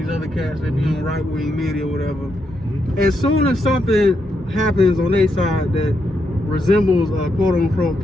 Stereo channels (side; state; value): both; normal; correlation 0.81